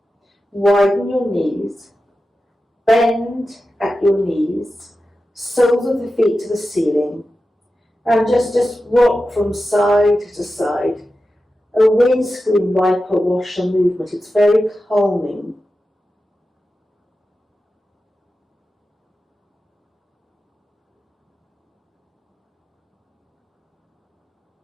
Widen your knees. Bend at your knees. Soles of the feet to the ceiling. And just rock from side to side. A windscreen wiper washer movement. It's very calming.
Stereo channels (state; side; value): normal; both; correlation 0.92